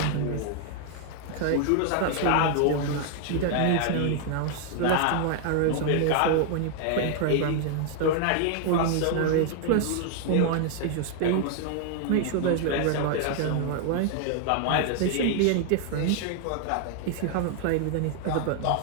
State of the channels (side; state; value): both; different; correlation 0.00